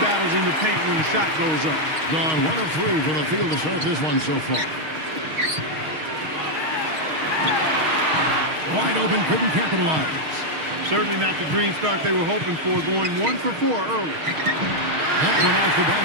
battles in the paint when the shot goes up. Gone 1 of 3 for the field to start this one so far. Wide open, couldn't capitalize. Certainly not the dream start they were hoping for, going 1 for 4 early. That one off the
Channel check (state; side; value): late; left; 6.4 ms